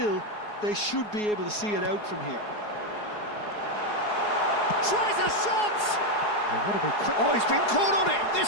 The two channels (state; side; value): late; right; 4.8 ms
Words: they should be able to see it out from here. Tries a shot! Oh, what a big quick... Oh, he's been caught on it!